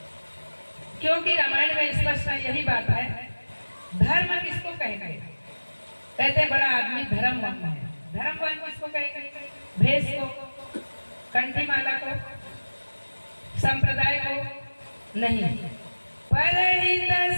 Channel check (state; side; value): inverted; both; correlation -1.00